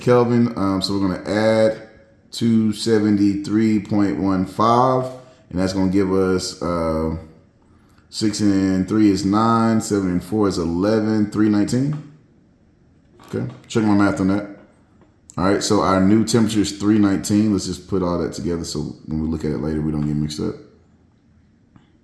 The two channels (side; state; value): both; identical; correlation 1.00